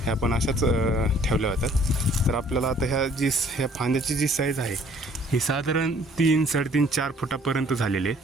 ह्या पण अशाच ठेवल्या होत्या. तर आपल्याला आता ह्या फांद्याची जी साईज आहे ही साधारण 3, 3.5, 4 फुटापर्यंत झालेली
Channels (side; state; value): both; normal; correlation 0.58